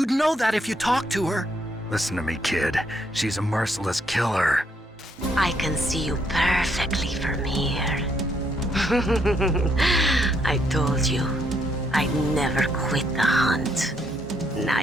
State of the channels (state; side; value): normal; both; correlation 0.73